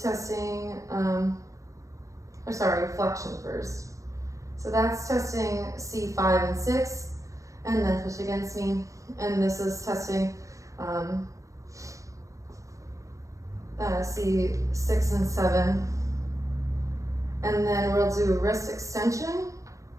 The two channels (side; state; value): left; late; 0.15 ms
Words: testing, flexion first. So that's testing C5 and 6, and then push against me. And this is testing C6 and 7. And then we'll do wrist extension,